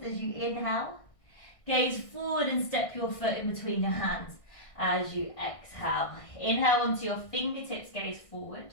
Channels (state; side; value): late; right; 1.6 ms